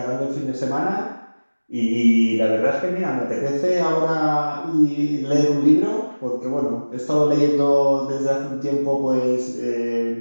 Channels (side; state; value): both; inverted; correlation -1.00